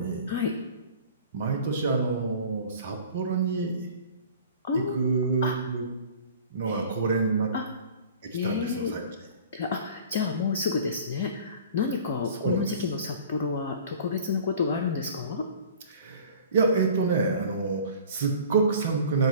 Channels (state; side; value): inverted; both; correlation -0.45